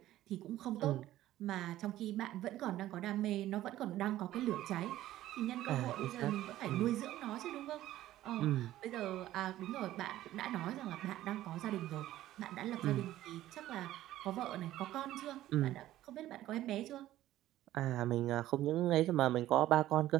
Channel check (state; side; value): quieter; left; 14.2 dB